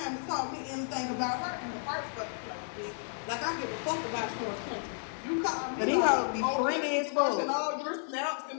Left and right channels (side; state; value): right; silent; 56 dB below the other